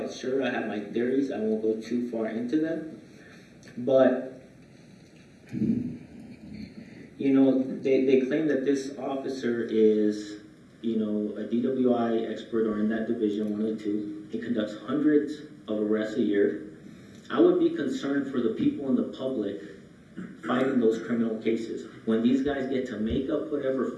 sure. I have my theories. I won't go too far into them. But, they claim that this officer is, a DWI expert or in that division, one of the two. He conducts hundreds of arrests a year. I would be concerned for the people in the public fighting those criminal cases. When these guys get to make up whatever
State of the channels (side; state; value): both; identical; correlation 1.00